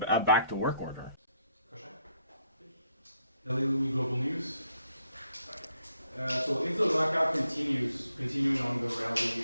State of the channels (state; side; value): inverted; both; correlation -0.73